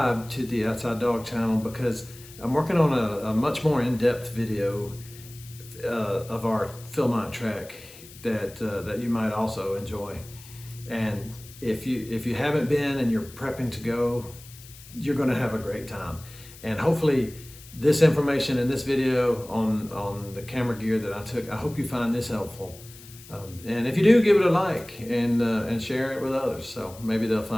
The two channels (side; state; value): left; noise; hiss, 19 dB below the sound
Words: to the Outside Dog channel because I'm working on a much more in-depth video of our Philmont track that you might also enjoy. And if you haven't been and you're prepping to go, you're going to have a great time. And hopefully this information in this video on the camera gear that I took, I hope you find this helpful. And if you do, give it a like and share it with others, so maybe they'll